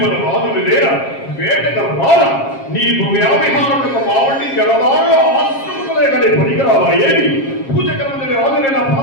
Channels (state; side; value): late; right; 7.4 ms